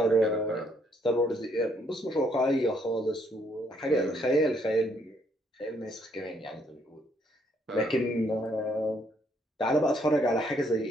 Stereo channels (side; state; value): both; normal; correlation 0.70